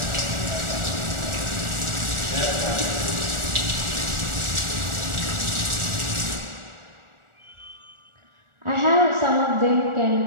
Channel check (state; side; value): late; left; 1.4 ms